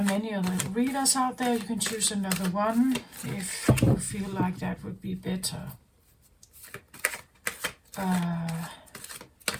many other readers out there. You can choose another one if you feel like that would be better.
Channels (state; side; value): identical; both; correlation 1.00